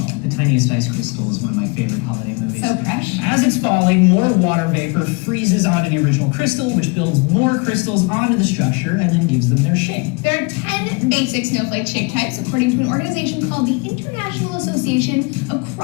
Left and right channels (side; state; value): right; quieter; 29.4 dB